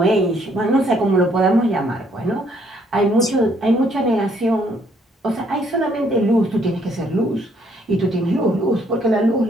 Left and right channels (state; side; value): normal; both; correlation 0.67